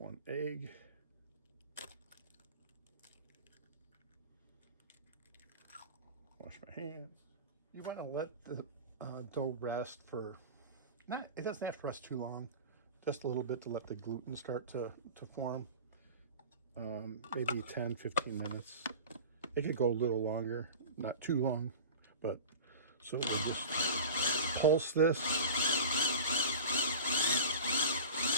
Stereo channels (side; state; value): both; inverted; correlation -0.34